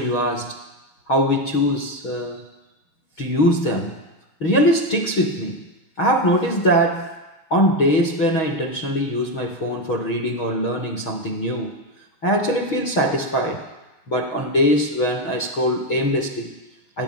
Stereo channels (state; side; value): late; right; 6.3 ms